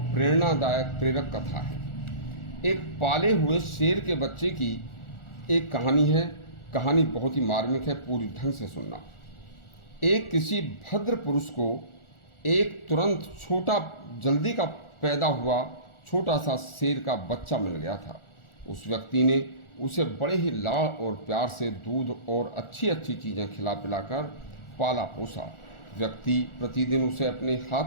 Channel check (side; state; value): right; late; 1.4 ms